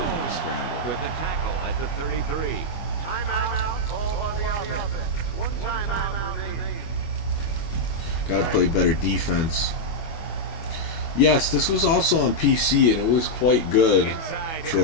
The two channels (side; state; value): right; late; 25 ms